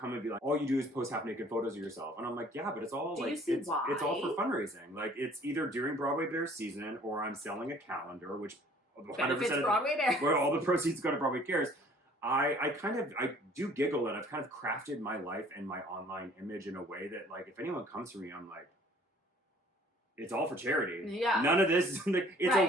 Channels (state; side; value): normal; both; correlation 0.55